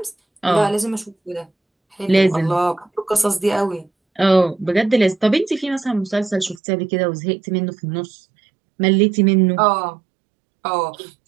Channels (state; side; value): drops out; left; at 6.6 s